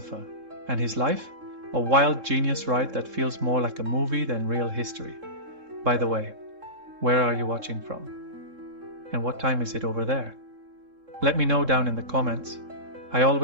And his life? A wild genius ride that feels more like a movie than real history. By the way, where are you watching from? And what time is it over there? Let me know down in the comments. I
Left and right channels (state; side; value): late; left; 3.7 ms